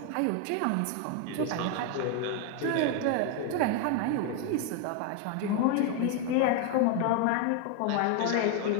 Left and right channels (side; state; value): both; different; correlation 0.01